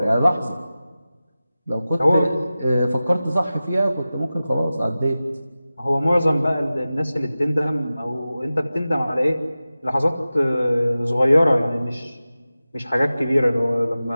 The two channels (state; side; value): inverted; both; correlation -0.95